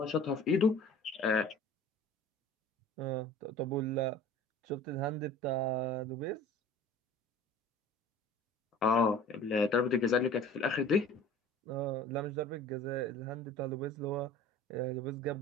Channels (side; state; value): both; normal; correlation 0.44